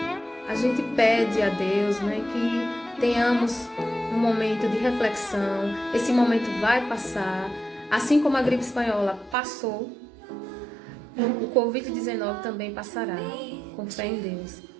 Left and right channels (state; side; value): drops out; left; at 9.3 s